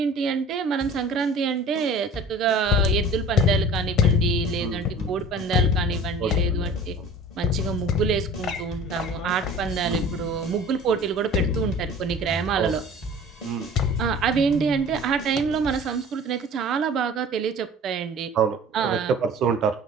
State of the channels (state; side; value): normal; both; correlation 0.43